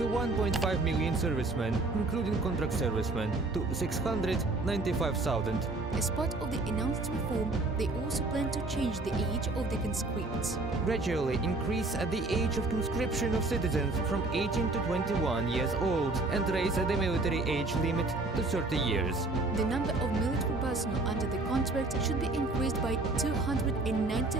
1.5 million servicemen, including contract servicemen, to 695,000. As part of the announced reform, they also plan to change the age of the conscripts. Gradually increase the age of conscription of citizens from 18 to 21 years old and raise the military age limit to 30 years. The number of military personnel under the contract should be increased by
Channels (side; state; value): left; quieter; 3.1 dB